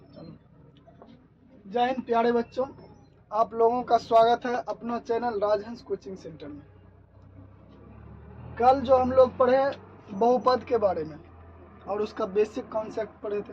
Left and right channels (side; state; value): both; identical; correlation 1.00